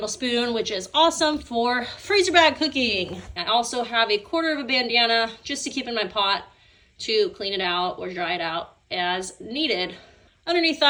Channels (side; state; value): both; identical; correlation 1.00